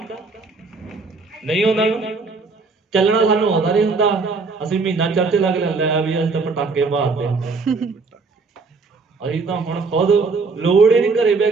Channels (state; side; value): quieter; left; 4.2 dB